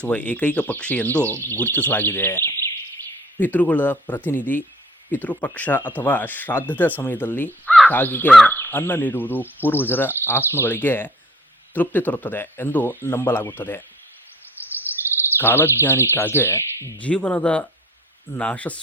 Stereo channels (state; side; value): normal; both; correlation 0.54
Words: ಏಕೈಕ ಪಕ್ಷಿ ಎಂದು ಗುರುತಿಸಲಾಗಿದೆ. ಪಿತೃಗಳ ಪ್ರತಿನಿಧಿ: ಪಿತೃಪಕ್ಷ ಅಥವಾ ಶ್ರಾದ್ದದ ಸಮಯದಲ್ಲಿ ಕಾಗೆಗೆ ಅನ್ನ ನೀಡುವುದು ಪೂರ್ವಜರ ಆತ್ಮಗಳಿಗೆ ತೃಪ್ತಿ ತರುತ್ತದೆ ಎಂದು ನಂಬಲಾಗುತ್ತದೆ. ಕಾಲಜ್ಞಾನಿ: ಕಾಗೆ ಜೀವನದ